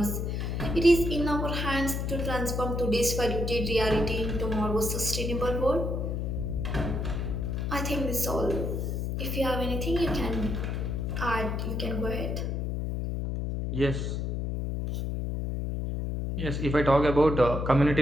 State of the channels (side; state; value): left; noise; hum, 1 dB below the sound